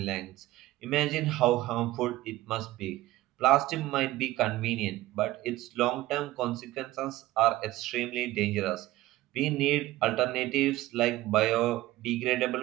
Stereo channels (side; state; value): left; quieter; 16.8 dB